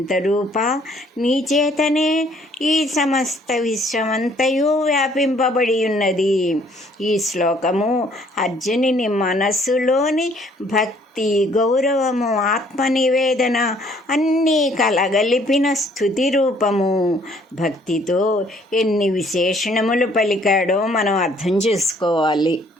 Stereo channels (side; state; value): both; normal; correlation 0.62